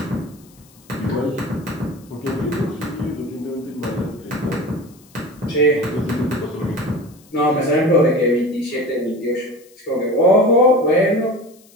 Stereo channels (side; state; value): left; noise; hiss, 28 dB below the sound